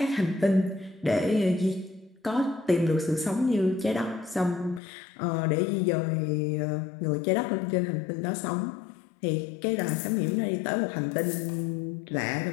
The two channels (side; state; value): right; drops out; at 4.8 s